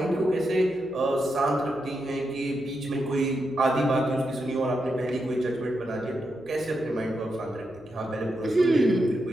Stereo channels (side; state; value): left; noise; hum, 27 dB below the sound